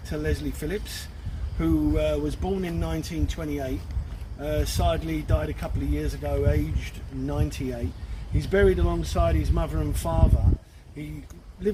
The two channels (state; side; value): identical; both; correlation 1.00